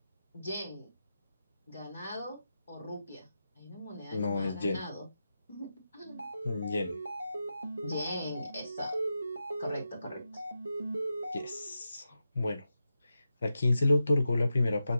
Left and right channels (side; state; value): both; inverted; correlation -0.89